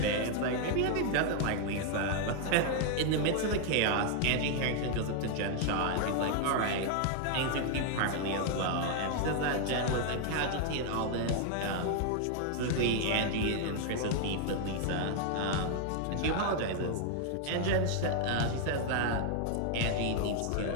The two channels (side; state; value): both; different; correlation 0.00